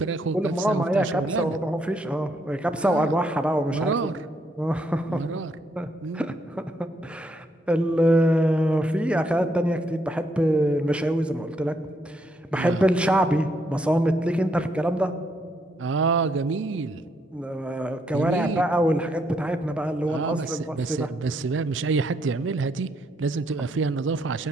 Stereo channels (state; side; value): normal; both; correlation 0.74